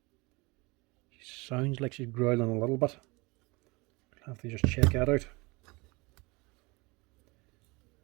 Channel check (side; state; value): left; quieter; 25.9 dB